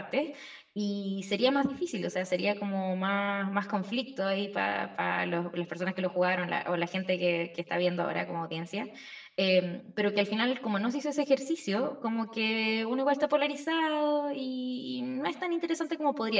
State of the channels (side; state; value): both; identical; correlation 1.00